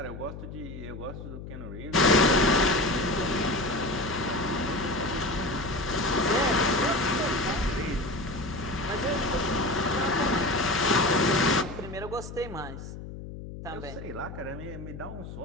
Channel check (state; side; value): noise; left; hum, 11 dB below the sound